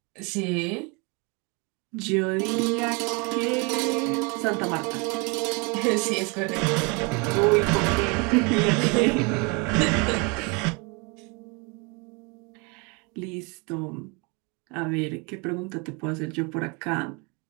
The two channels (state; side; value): quieter; left; 30.6 dB